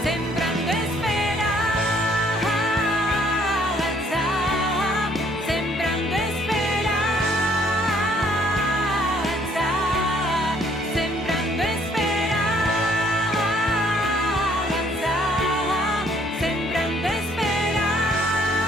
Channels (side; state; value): both; normal; correlation 0.63